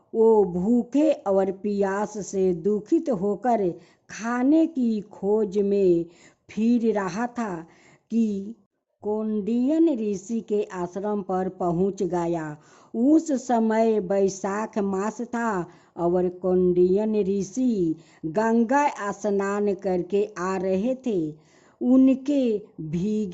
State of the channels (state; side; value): identical; both; correlation 1.00